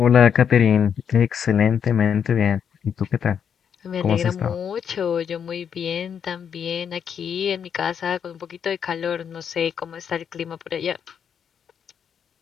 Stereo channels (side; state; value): right; quieter; 7.8 dB